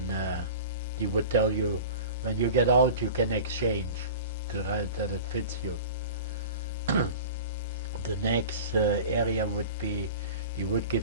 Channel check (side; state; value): both; inverted; correlation -0.36